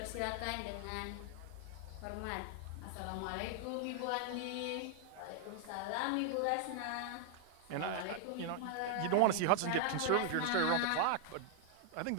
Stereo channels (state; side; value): different; both; correlation 0.00